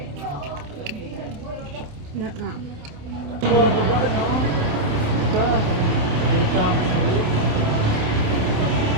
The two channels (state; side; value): late; left; 27 ms